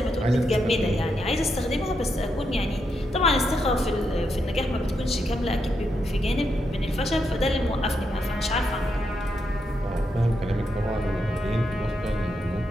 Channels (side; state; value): both; normal; correlation 0.82